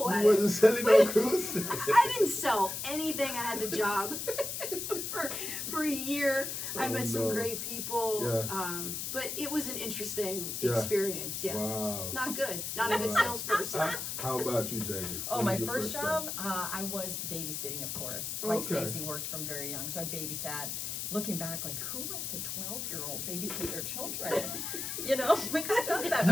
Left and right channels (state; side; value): noise; left; hiss, 4 dB below the sound